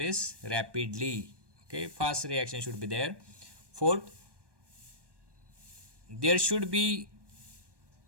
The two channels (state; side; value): late; left; 1.2 ms